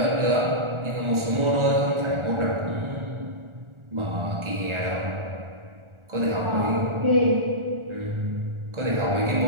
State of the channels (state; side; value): late; left; 1.4 ms